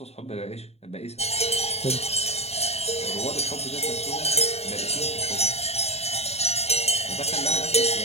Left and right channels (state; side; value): late; right; 0.30 ms